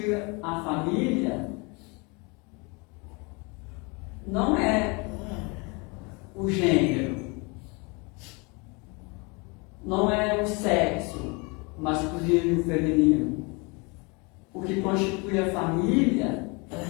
a família não é o gênero, não é o sexo masculino e feminino. O que constitui a família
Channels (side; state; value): right; quieter; 29.6 dB